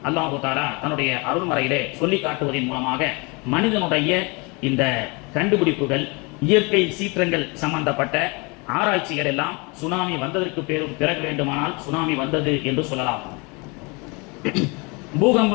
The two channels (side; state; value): right; quieter; 29.0 dB